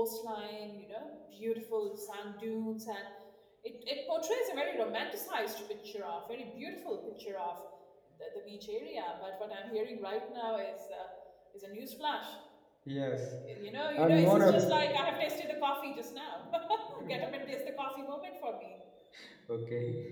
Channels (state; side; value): identical; both; correlation 1.00